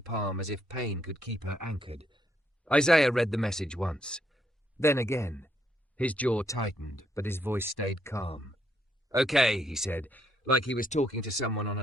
as if pain could keep her anchored. Isaiah read the message once. Then again. His jaw tightened, but his voice stayed calm. Okay, he said, like he was talking to someone on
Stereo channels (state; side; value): normal; both; correlation 0.74